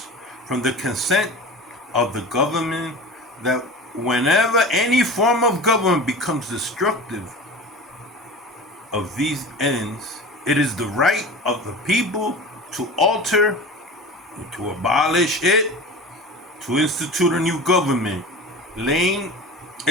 from the consent of the government, that whenever any form of government becomes destructive of these ends, it is the right of the people to alter, to abolish it, to institute a new government, laying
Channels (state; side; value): normal; both; correlation 0.34